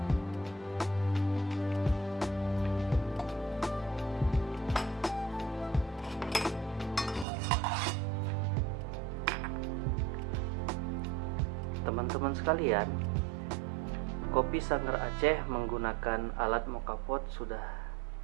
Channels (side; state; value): left; drops out; at 7.2 s